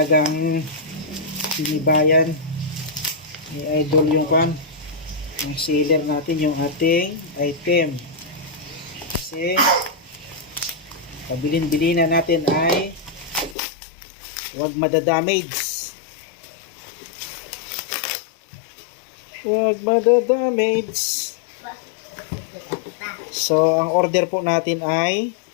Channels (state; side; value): drops out; right; at 13.6 s